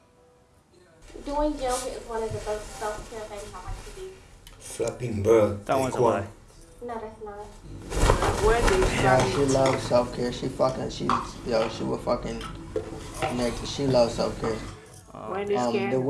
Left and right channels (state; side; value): identical; both; correlation 1.00